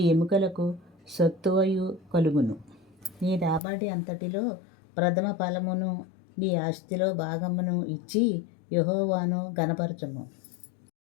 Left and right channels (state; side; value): drops out; right; at 3.6 s